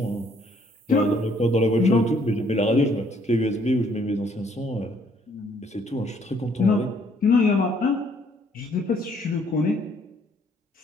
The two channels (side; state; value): both; normal; correlation 0.65